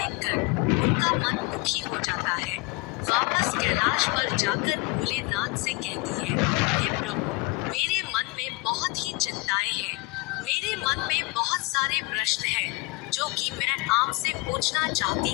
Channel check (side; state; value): right; quieter; 24.8 dB